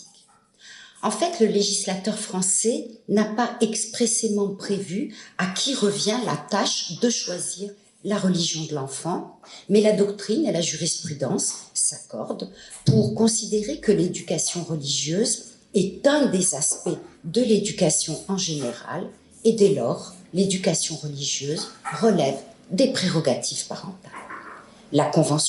En fait, le législateur français n'a pas expressément prévu à qui revient la tâche de choisir la religion de l'enfant, mais la doctrine et la jurisprudence s'accordent pour considérer que l'éducation religieuse est un des aspects de l'éducation en général, et dès lors, l'éducation religieuse relève des prérogatives parentales. La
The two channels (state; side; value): identical; both; correlation 1.00